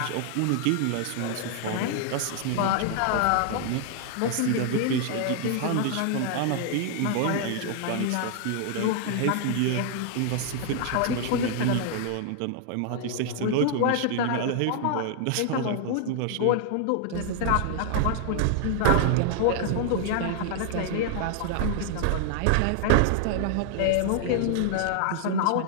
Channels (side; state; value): both; different; correlation 0.00